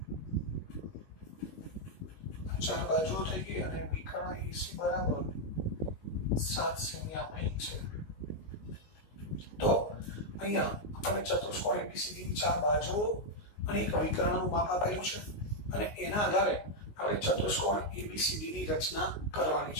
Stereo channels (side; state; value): right; late; 19 ms